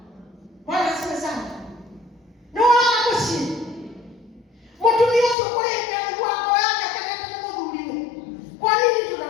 wala sasa no muci mutumia sio kuleta wako yake kana muthuri kwa nini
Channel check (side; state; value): right; drops out; at 5.4 s